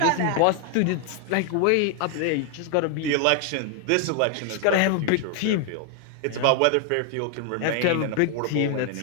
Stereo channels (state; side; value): different; both; correlation 0.00